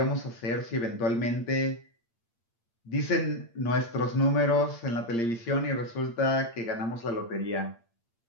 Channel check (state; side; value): late; right; 8.7 ms